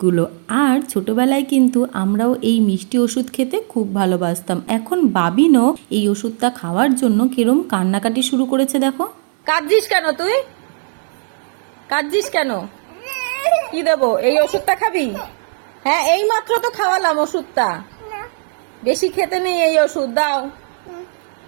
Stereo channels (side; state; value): left; silent; 68 dB below the other